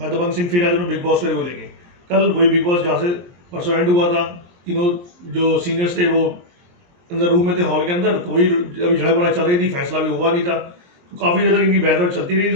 दबंग सिंह फिर आ जाऊँ बिग बॉस को लेके। कल वही बिग बॉस जहाँ से परसों एंड हुआ था, तीनों जो सीनियर्स थे वो अंदर रूम में थे, हॉल के अंदर। तो वही अभी झड़प वगैरह चल रही थी, फैसला भी हुआ नहीं था। तो काफ़ी देर तक इनकी बहस चलती रही।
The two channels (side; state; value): left; late; 23 ms